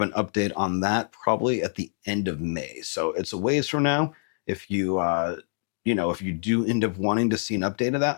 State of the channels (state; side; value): silent; right; digital silence